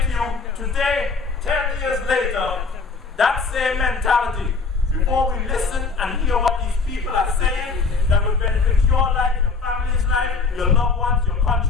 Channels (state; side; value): quieter; right; 4.6 dB